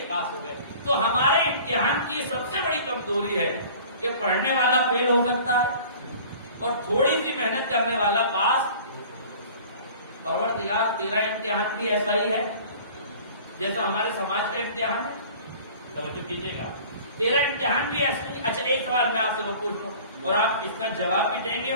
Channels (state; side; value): inverted; both; correlation -0.45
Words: پاس ہو گئے۔ تو ہمارے امتحان کی سب سے بڑی کمزوری ہے کہ پڑھنے والا فیل ہو سکتا ہے اور تھوڑی سی محنت کرنے والا پاس۔ پروردگار تیرا امتحان بھی ایسا ہی ہے جیسا ہمارے سماج کا امتحان ہے، توجہ کیجیے گا، تیرا امتحان بھی ایسا ہی۔ اچھا، ایک سوال میں آپ سے وہ پوچھ لوں اور آپ اس کا جواب بھی دیں گے